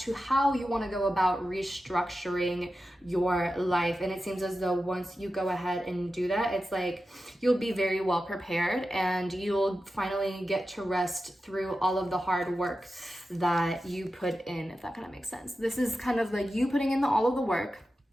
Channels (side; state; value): both; normal; correlation 0.92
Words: how you want to go about restructuring your life. And it seems as though once you go ahead and do that, it's like you'll be very well prepared, and you'll finally get to rest through all of the hard work that you put in, if that kind of makes sense. This is kind of like you putting in all of the work,